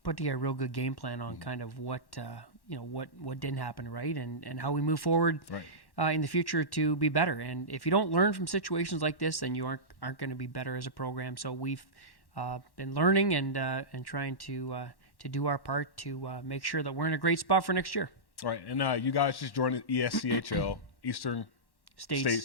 put together a real good game plan on kind of what didn't happen right and how we move forward in the future to be better. And if you don't learn from situations like this, then you aren't going to be better as a program. So we've been learning and trying to do our part to make sure that we're in a great spot for next year. Right, and you guys just joined the ESCHL, Eastern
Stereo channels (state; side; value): late; right; 1.1 ms